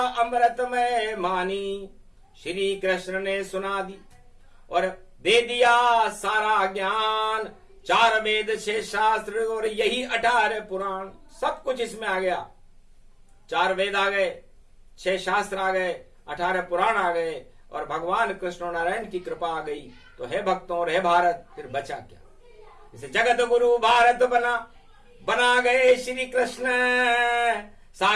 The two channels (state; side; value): identical; both; correlation 1.00